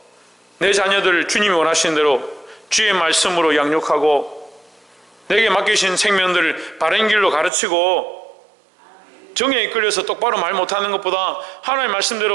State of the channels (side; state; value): left; drops out; at 7.5 s